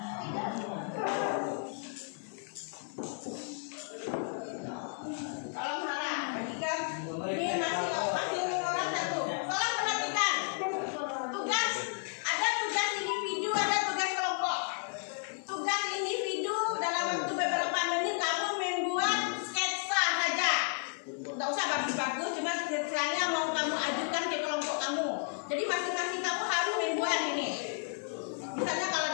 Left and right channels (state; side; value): silent; right; 56 dB below the other